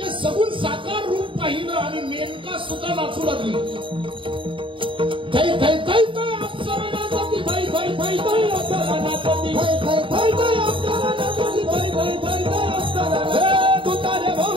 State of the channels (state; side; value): late; left; 0.25 ms